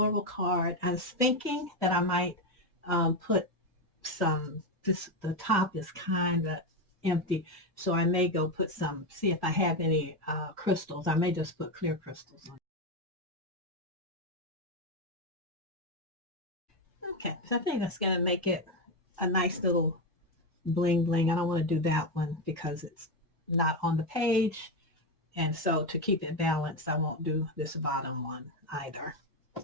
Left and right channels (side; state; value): both; normal; correlation 0.10